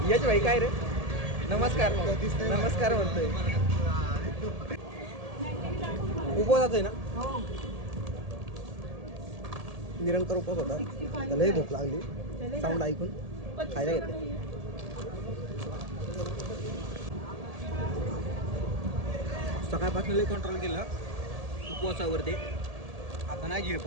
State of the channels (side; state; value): left; late; 1.7 ms